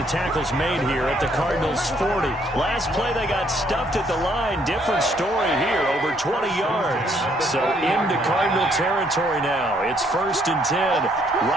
tackle's made here at the Cardinals' 40. Last play, they got stuffed at the line. Different story here, over 20 yards. So into Cardinal territory now. It's 1st and 10,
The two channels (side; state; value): both; normal; correlation 0.68